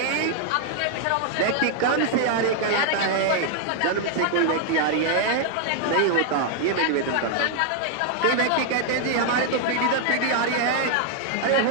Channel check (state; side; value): different; both; correlation 0.00